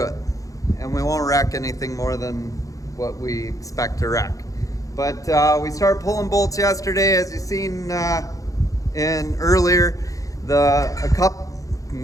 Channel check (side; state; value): right; late; 0.16 ms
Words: it. And we won't wreck anything more than what we expect to wreck. But we started pulling bolts yesterday, as you've seen in earlier.